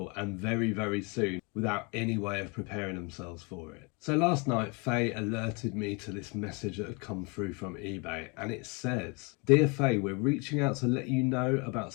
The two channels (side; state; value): right; quieter; 30.9 dB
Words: and very, very soon without any way of preparing themselves for it. So last night, Faye alerted me to this message that had come through from eBay and it says, "Dear Faye, we're reaching out to let you know about